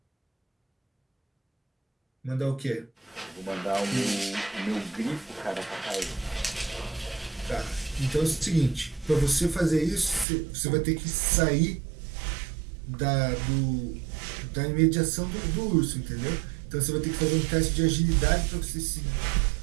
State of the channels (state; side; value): drops out; left; at 10.2 s